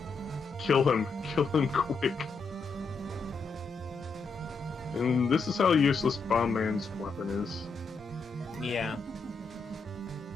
kill him quick. And this is how useless Bomb Man's weapon is. Yeah.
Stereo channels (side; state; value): right; quieter; 4.3 dB